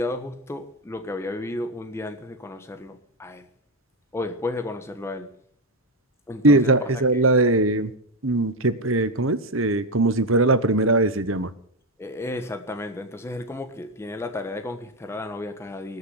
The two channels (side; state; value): both; normal; correlation 0.08